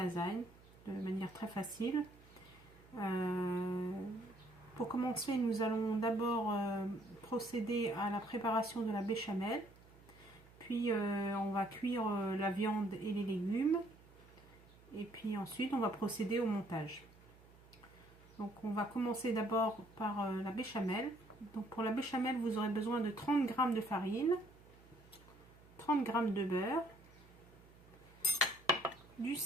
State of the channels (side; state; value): right; noise; hum, 24 dB below the sound